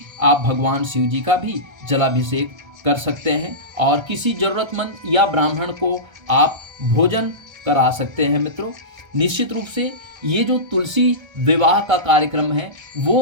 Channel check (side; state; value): left; late; 1.3 ms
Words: आप भगवान शिव जी का भी जलाभिषेक कर सकते हैं और किसी ज़रूरतमंद या ब्राह्मण को आप भोजन करा सकते हैं मित्रों। निश्चित रूप से ये जो तुलसी विवाह का कार्यक्रम है